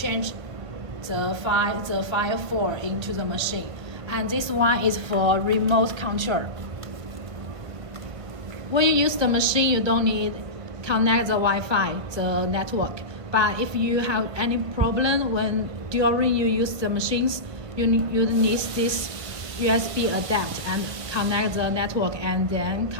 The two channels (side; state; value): left; late; 1.5 ms